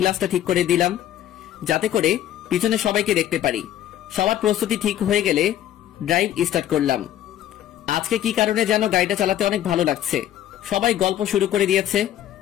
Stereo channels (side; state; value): right; quieter; 11.9 dB